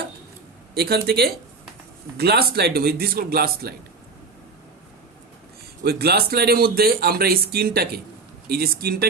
এখান থেকে গ্লাস স্লাইড নেব, দিস কল গ্লাস স্লাইড। ওই গ্লাস স্লাইডের মধ্যে আমরা এই স্কিনটাকে, এই যে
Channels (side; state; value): left; quieter; 4.3 dB